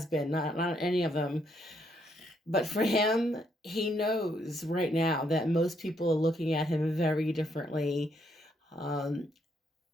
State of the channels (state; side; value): normal; both; correlation 0.74